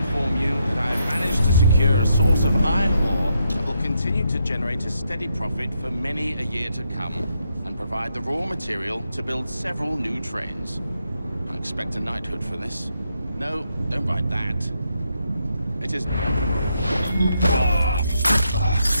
you that I have managed to secure a source of iron ore that will continue to generate a steady profit for many a year to come, and provide the raw material to build several new trains. I expect a knighthood for this. No, don't write that. It is...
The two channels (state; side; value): inverted; both; correlation -0.80